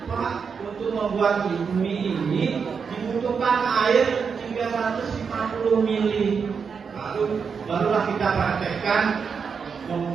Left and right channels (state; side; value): quieter; left; 6.0 dB